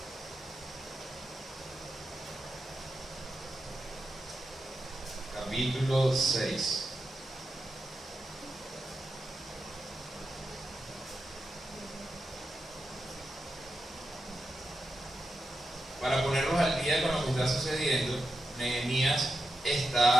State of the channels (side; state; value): both; normal; correlation 0.88